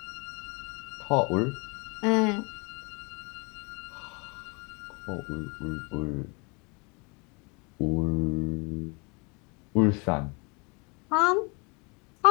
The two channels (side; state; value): right; quieter; 30.4 dB